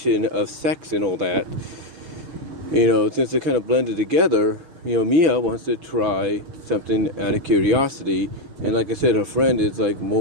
of sex and all that, since they're kind of blended together, Mia wants to try something out of curiosity, and like I said, her friend is like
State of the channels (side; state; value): left; late; 6.2 ms